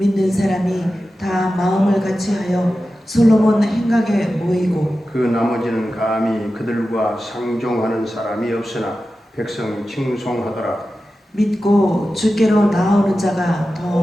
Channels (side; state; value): both; normal; correlation 0.93